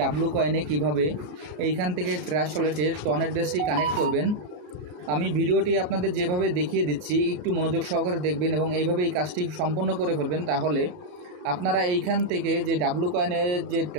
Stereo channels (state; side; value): late; left; 33 ms